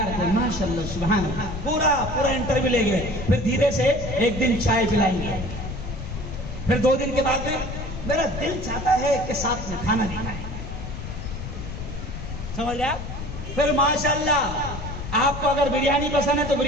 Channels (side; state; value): left; noise; rumble, 8 dB below the sound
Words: کے. ماشاءاللہ سبحان اللہ. پورا انٹرویو لے گئے. پھر دھیرے سے ایک دن چائے پلائیں گے، پھر 2 دن کے بعد میں میرا دل چاہتا ہے کہ ساتھ میں کھانا دینا ہے. سمجھ لیا؟ پھر ماشاءاللہ آپ کو اگر بریانی پسند ہے تو